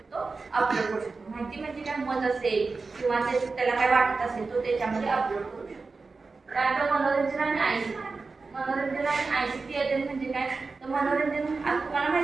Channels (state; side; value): quieter; left; 4.1 dB